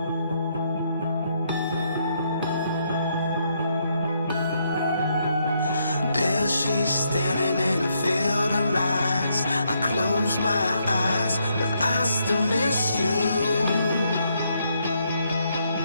There she's standing in a field of lights. I close my eyes, but I still miss you.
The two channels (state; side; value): inverted; both; correlation -0.75